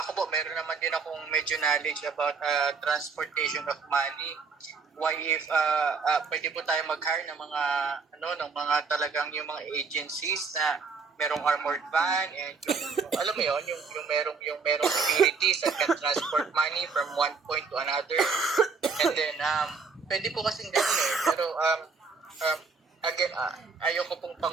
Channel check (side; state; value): left; quieter; 5.0 dB